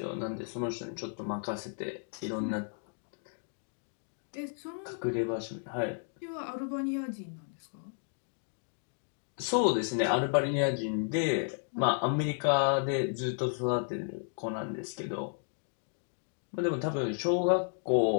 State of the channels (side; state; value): right; silent; 56 dB below the other